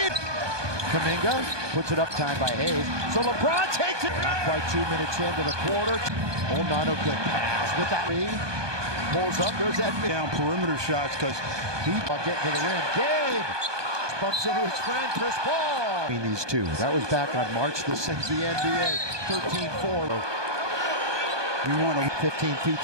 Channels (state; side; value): late; left; 1.2 ms